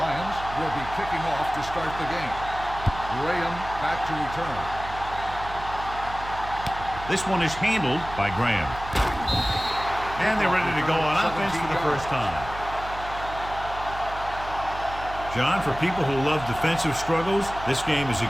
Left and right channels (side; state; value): right; noise; hum, 12 dB below the sound